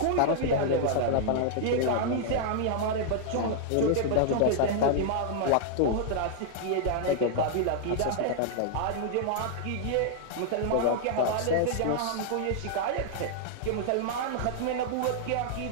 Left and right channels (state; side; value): different; both; correlation -0.01